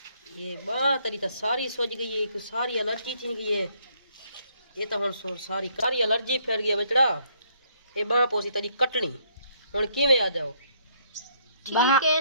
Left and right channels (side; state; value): both; inverted; correlation -0.68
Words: ये बात तेरी तो सारी सोच गई है कि सारी एलर्जी थी गई है ये तो हुन सारी एलर्जी फैल गई बचड़ा ये बाह पोसी तेरी कटनी हुन किवें आ जाओ ठीक है